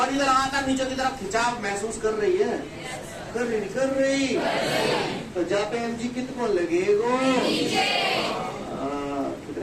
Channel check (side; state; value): both; identical; correlation 1.00